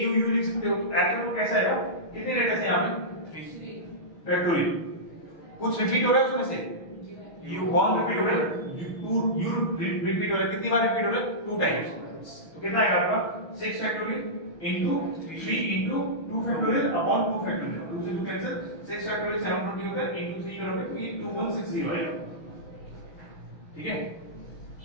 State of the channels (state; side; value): late; right; 6.3 ms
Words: यू यू लिख सकते हो। एक्चुअली वो कैसा आएगा? कितने लेटर्स हैं यहाँ पे? फैक्टोरियल। कुछ रिपीट हो रहा है उसमें से? यू वन रिपीट हो रहा है, यू रिपीट हो रहा है। कितनी बार रिपीट हो रहा है? 2 टाइम्स। तो कितना आएगा आपका? 6 factorial into 3 into 2 factorial upon 2 factorial। 2 से 2 कैंसिल, 6 factorial 720 होता है, into 3 करोगे तो ये 2160 आएगा। ठीक है,